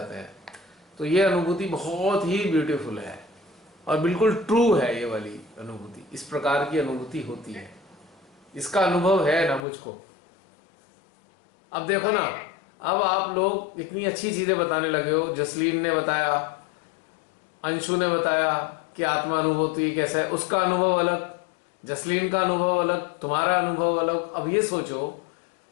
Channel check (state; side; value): drops out; right; at 9.6 s